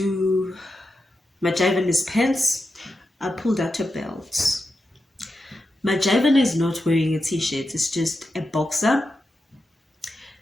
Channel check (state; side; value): normal; both; correlation 0.89